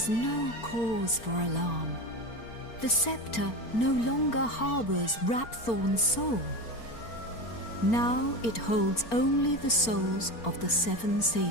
no cause for alarm. The scepter no longer harbors Rhaphorne's soul. Now it holds only the souls of the 7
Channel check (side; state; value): right; late; 4.4 ms